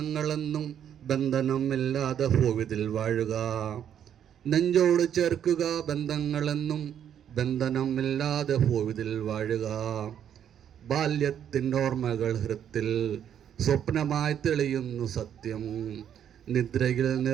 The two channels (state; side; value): quieter; left; 9.3 dB